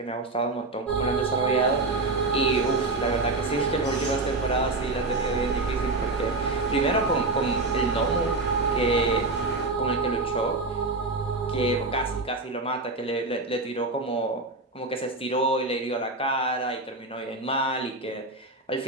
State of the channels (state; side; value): quieter; left; 3.1 dB